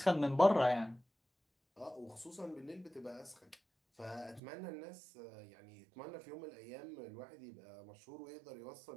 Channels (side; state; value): left; drops out; at 4.4 s